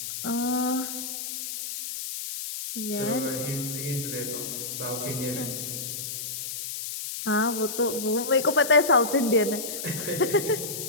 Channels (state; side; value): noise; left; hiss, 6 dB below the sound